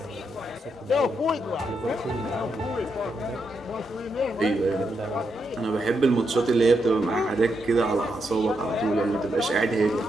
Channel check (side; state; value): both; normal; correlation 0.82